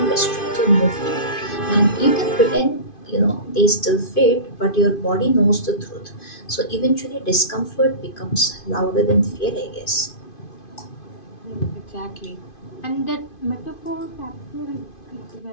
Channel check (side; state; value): right; late; 2.5 ms